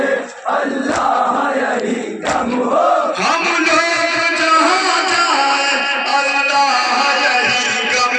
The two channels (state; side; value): identical; both; correlation 1.00